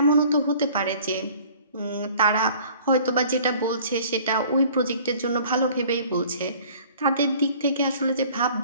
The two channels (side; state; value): both; inverted; correlation -0.51